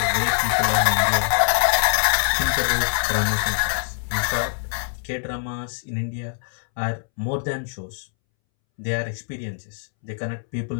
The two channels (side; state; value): right; silent; 63 dB below the other